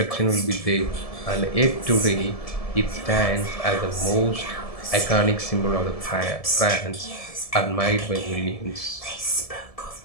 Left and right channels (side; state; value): right; late; 1.7 ms